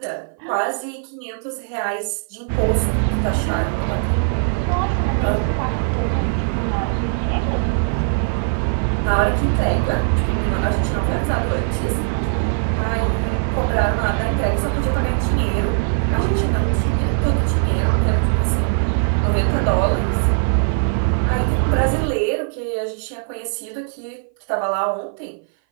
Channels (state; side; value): silent; left; 58 dB below the other